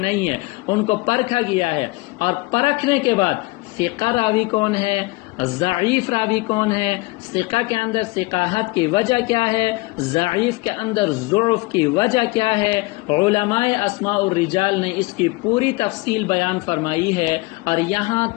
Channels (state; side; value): quieter; right; 23.6 dB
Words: ہے، ان کو پرکھا گیا ہے. اور پرکھنے کے بعد ثقہ راوی کون ہے، ضعیف راوی کون ہے، ثقہ کے اندر ثقاحت کی وجہ کیا ہے، ضعیف کے اندر ضعف کی وجہ کیا ہے. علماء اسماء الرجال نے اس کی پوری تفصیل بیان فرمائی ہے. اور یہاں